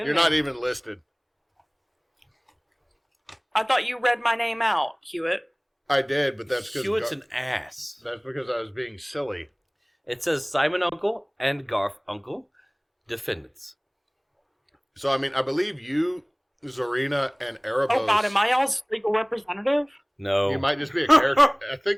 You're there. not even listed. I thought you read my name out, Hewitt. I did, but that's because Hewitt's an ass. That's because I was being silly. It says Simon Uncle and Garf Uncle, defendants. So, I mean, I believe you, Zarina, and Erebos... Oh god, am I y'all's legal representative? No. You might just be a character... I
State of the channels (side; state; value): both; identical; correlation 1.00